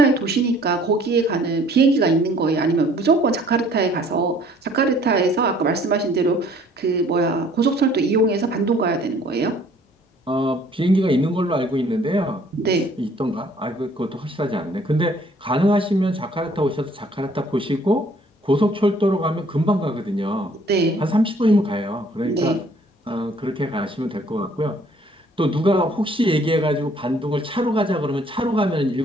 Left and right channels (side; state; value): both; normal; correlation 0.58